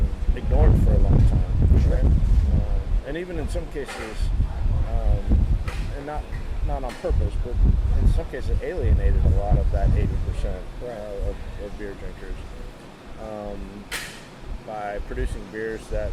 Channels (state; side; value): identical; both; correlation 1.00